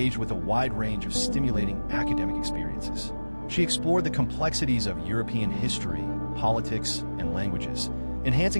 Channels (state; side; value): inverted; both; correlation -1.00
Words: with a wide range of stimulating academic experiences. She explored the complexities of European history, politics, and languages,